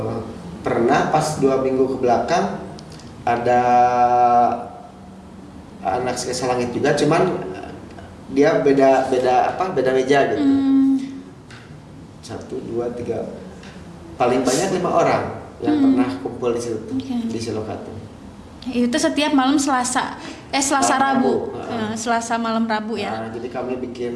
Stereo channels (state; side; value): identical; both; correlation 1.00